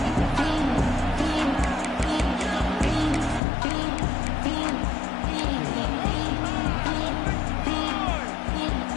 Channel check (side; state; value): right; drops out; at 3.4 s